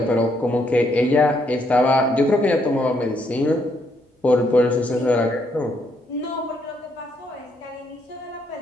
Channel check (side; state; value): both; normal; correlation 0.74